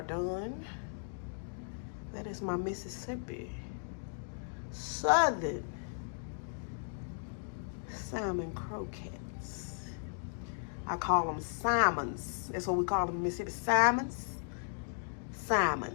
done. That is my Mississippi Southern salmon croquettes. I call them salmons. That's what we call them in Mississippi. Salmons.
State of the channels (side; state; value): right; silent; digital silence